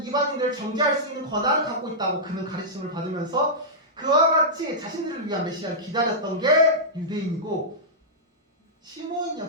이방인들을 정죄할 수 있는 권한을 갖고 있다고 그는 가르침을 받으면서 그와 같이 자신들을 위한 메시아를 기다렸던 게 유대인이고 시므온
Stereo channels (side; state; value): both; normal; correlation -0.13